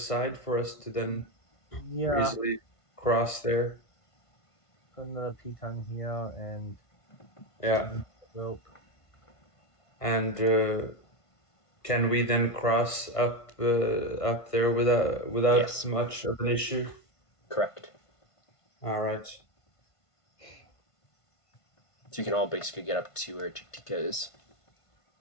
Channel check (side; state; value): right; late; 1.5 ms